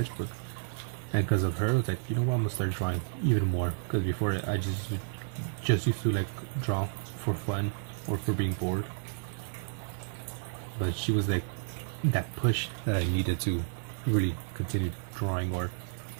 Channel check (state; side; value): silent; left; 57 dB below the other